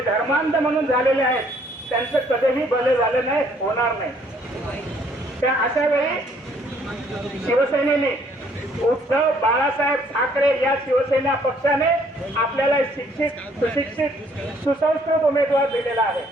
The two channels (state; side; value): normal; both; correlation 0.63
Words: धर्मांध म्हणून झालेले आहेत, त्यांचं कधीही भले झालं नाही, होणार नाही. त्या अशा वेळी शिवसेनेने, उद्धव बाळासाहेब ठाकरे या शिवसेना पक्षाने आपल्याला शिक्षित, सुशिक्षित, सुसंस्कृत उमेदवार दिलेला आहे.